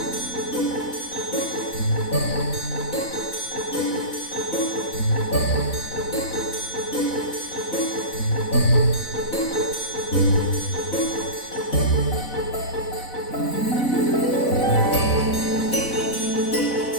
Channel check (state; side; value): late; right; 4.0 ms